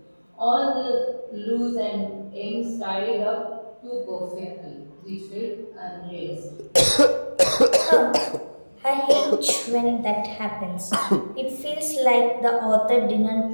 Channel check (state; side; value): inverted; both; correlation -1.00